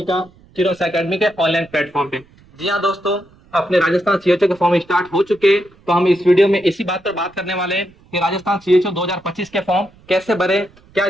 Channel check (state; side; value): noise; right; rumble, 28 dB below the sound